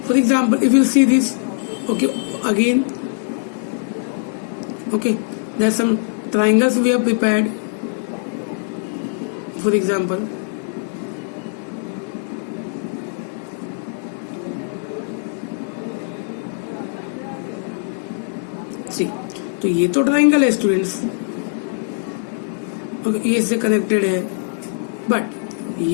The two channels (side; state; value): right; silent; 65 dB below the other